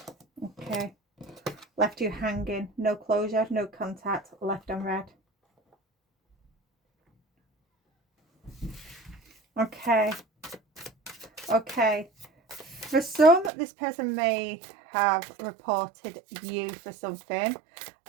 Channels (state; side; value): drops out; left; at 13.5 s